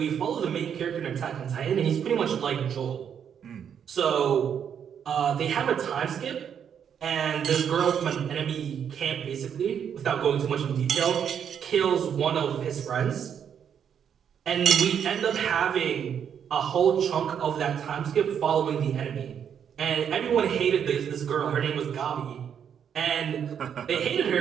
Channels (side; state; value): left; quieter; 8.2 dB